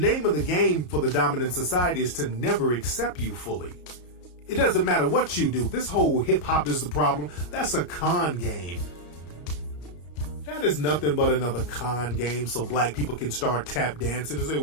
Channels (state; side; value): late; right; 33 ms